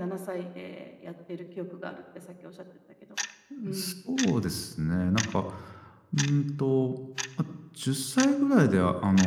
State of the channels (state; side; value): identical; both; correlation 1.00